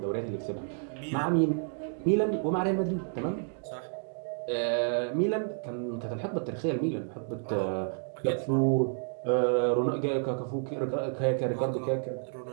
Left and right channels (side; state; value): left; silent; 58 dB below the other